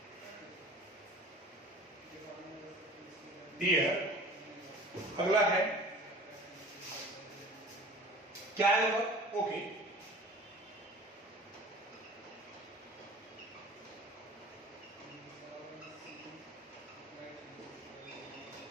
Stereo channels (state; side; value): normal; both; correlation 0.43